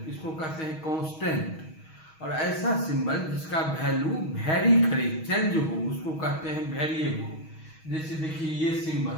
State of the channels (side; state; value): right; late; 6.3 ms